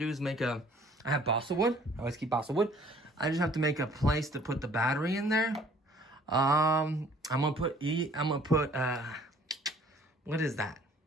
is make I have balsa wood. I always keep balsa wood. I just have to make a place to put the battery in there. I'm gonna put what is that?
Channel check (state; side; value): normal; both; correlation 0.56